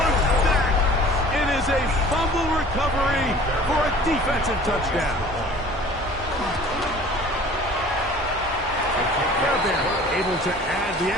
back. It is a fumble recovery for a defensive touchdown. Fairbairn able to add the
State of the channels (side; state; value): both; normal; correlation 0.47